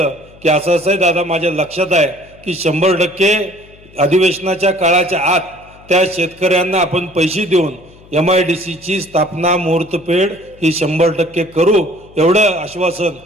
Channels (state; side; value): noise; left; hum, 25 dB below the sound